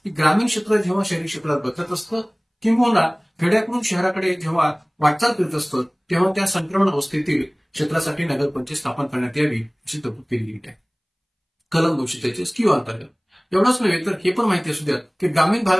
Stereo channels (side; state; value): both; identical; correlation 1.00